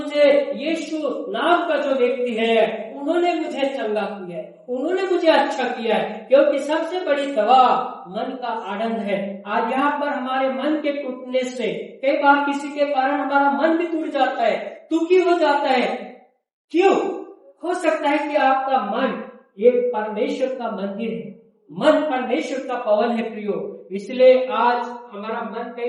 यीशु नाम का जो व्यक्ति है उन्होंने मुझे चंगा किया है, उन्होंने मुझे अच्छा किया है, क्योंकि सबसे बड़ी दवा मन का आनंद है। आज यहाँ पर हमारे मन के टूटने से कई बार किसी के कारण हमारा मन भी टूट जाता है, दुखी हो जाता है। क्यों? हो सकता है कि आपका मन एक परमेश्वर का मंदिर है, मन परमेश्वर का भवन है प्रियो। इसलिए आज हमारा मन कई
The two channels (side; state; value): both; identical; correlation 1.00